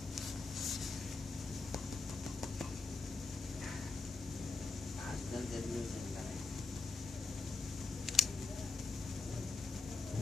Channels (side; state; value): right; quieter; 3.5 dB